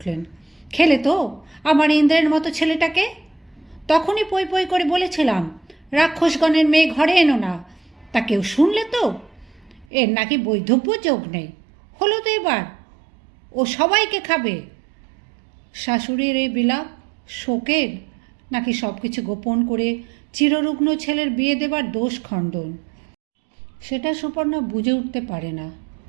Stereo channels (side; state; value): left; drops out; at 9.9 s